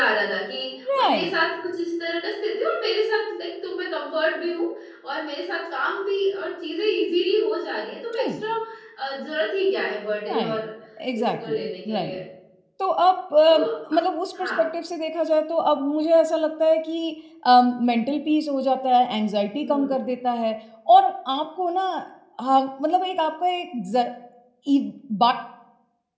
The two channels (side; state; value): both; identical; correlation 1.00